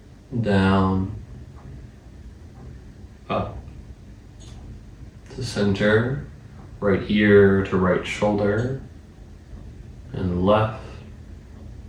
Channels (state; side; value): identical; both; correlation 1.00